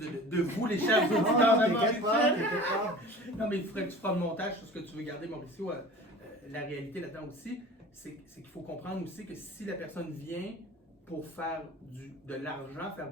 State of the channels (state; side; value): normal; both; correlation 0.41